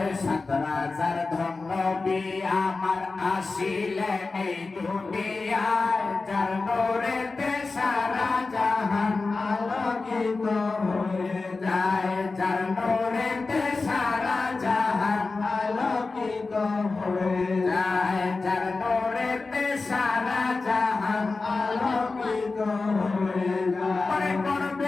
সাত রাজার ধন্যবী আমার আসিলেন এই দুনিয়ায়, যার নূরেতে সারা জাহান আলোকিত হয়ে যায়, যার নূরেতে সারা জাহান আলোকিত হয়ে যায়, যার নূরেতে সারা জাহান আলোকিত হয়ে যায়।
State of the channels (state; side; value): quieter; right; 3.8 dB